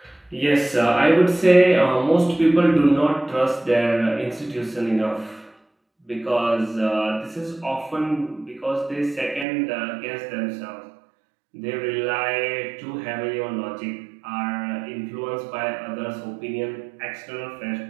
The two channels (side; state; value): left; drops out; at 9.5 s